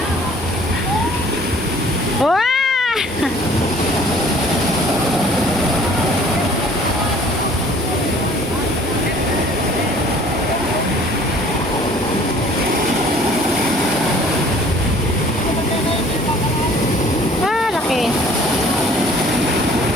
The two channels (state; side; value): normal; both; correlation 0.53